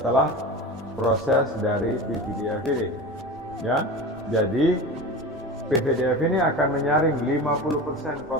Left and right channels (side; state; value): both; normal; correlation 0.30